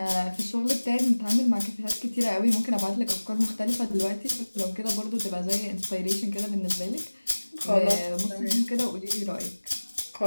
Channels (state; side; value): inverted; both; correlation -1.00